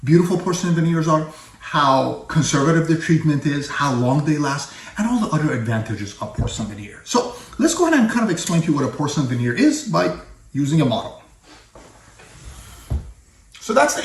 beautiful porcelain veneers are, how conservative the treatment is, how long they last, and all the other advantages of porcelain veneer. So let's go ahead and kind of explain to you what a porcelain veneer is by using a model. So that's the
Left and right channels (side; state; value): both; identical; correlation 1.00